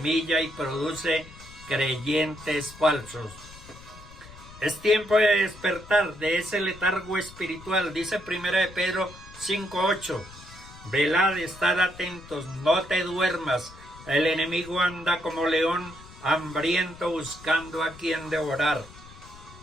y produce creyentes falsos. Es tiempo de despertar de ese letargo espiritual, dice 1 de Pedro 5:8. Velad, estad atentos, no te duermas. El enemigo anda como león hambriento buscando a quien devorar.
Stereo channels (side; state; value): left; noise; rumble, 19 dB below the sound